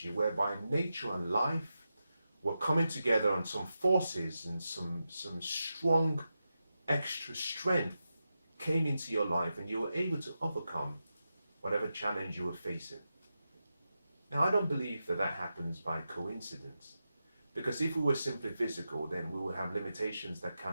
whereby nature and life were coming together, on some forces and some strong extra strength came into your life, and you were able to overcome whatever challenge you were facing. Now, I don't believe that happens by coincidence, because if we were simply physical, then we would have limitations that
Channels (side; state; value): both; inverted; correlation -0.89